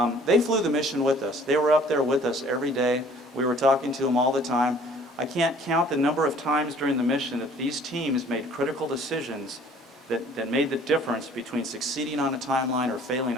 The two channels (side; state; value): both; normal; correlation 0.54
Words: They flew the mission with us. They were up there with us every day. We were talking to them all the time. I can't count the number of times during the mission that these teams made critical decisions that made the difference between succeeding on a timeline or failing